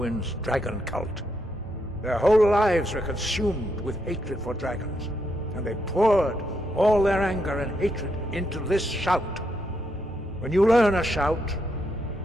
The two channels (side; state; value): both; normal; correlation 0.79